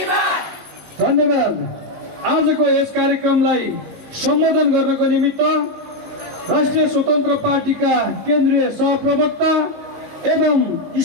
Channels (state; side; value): late; left; 19 ms